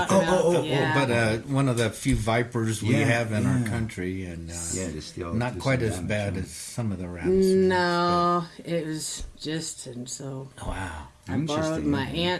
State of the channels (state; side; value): identical; both; correlation 1.00